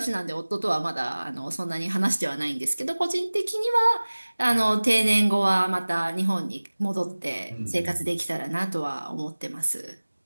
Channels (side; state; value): both; inverted; correlation -1.00